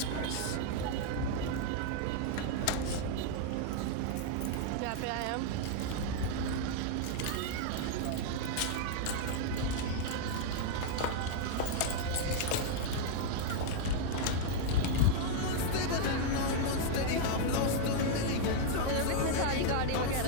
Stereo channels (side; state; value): both; different; correlation 0.00